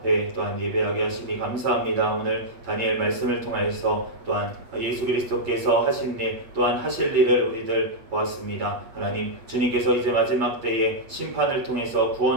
또한 예배하게 하시니 감사합니다. 오늘 다니엘 말씀을 통하여서 또한 예수 그리스도께서 하신 일, 또한 하실 일을 우리들 보았습니다. 하나님, 주님께서 이제 마지막 때에 심판을 통해서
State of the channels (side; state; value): left; late; 8.5 ms